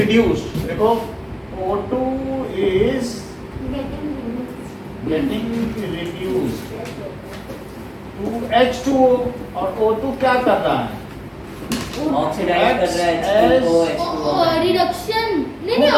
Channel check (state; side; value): identical; both; correlation 1.00